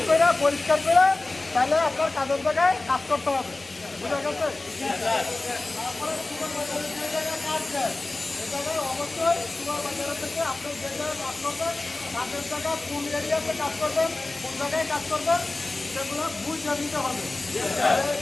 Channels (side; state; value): right; quieter; 3.1 dB